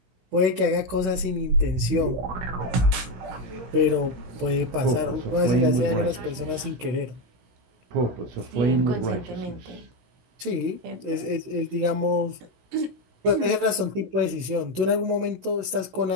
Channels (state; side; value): late; left; 16 ms